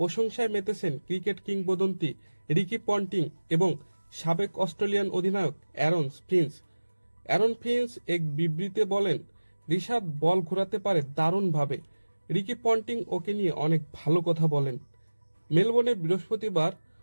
মেতেছেন ক্রিকেট কিংবদন্তি রিকি পন্টিং এবং সাবেক অস্ট্রেলিয়ান অধিনায়ক অ্যারন ফিঞ্চ এক বিবৃতিতে বলেন, রিশাদ বল ঘোরাতে পারে দারুণভাবে। রিকি পন্টিং ওকে নিয়ে অনেক ভালো কথা বলেন। মেলবোর্নে বৃহস্পতিবার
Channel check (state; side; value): inverted; both; correlation -1.00